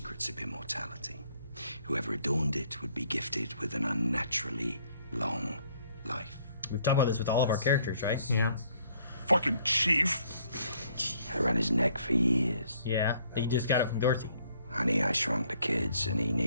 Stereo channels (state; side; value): inverted; both; correlation -0.65